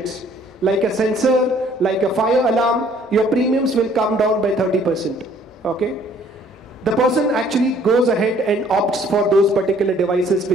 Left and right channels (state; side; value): normal; both; correlation 0.59